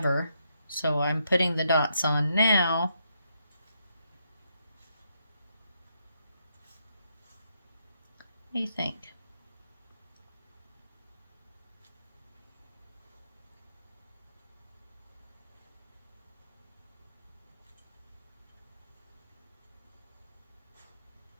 So I'm putting the dots on now. What do you think?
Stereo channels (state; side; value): inverted; both; correlation -0.78